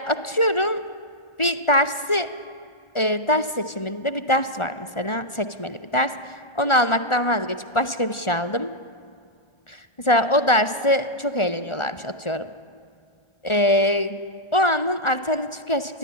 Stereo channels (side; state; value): right; late; 1.4 ms